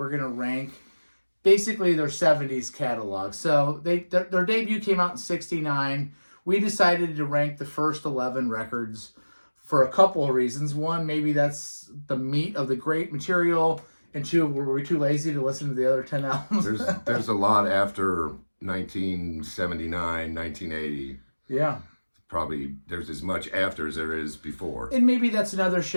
going to rank basically their 70s catalog. So their debut came out in 69. We decided to rank the first 11 records for a couple of reasons. One, maybe that's the meat of the great material. And two, were we too lazy to listen to the other 10 albums? There's a lot after 1979, 1980. Yeah. Probably there's as much after as there is before. And maybe that's another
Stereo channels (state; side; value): inverted; both; correlation -1.00